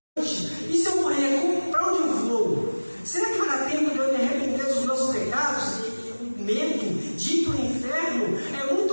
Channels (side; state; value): both; inverted; correlation -1.00